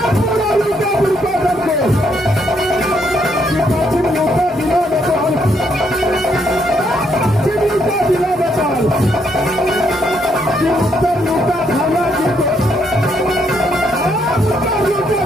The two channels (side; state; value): both; normal; correlation 0.74